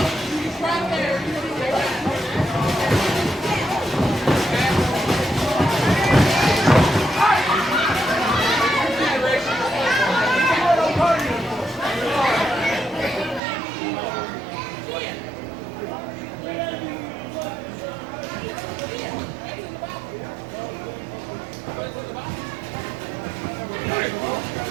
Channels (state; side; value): drops out; left; at 13.4 s